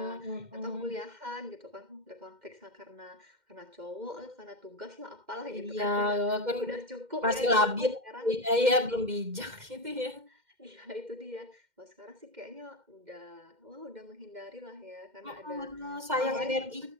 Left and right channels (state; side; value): late; left; 2.1 ms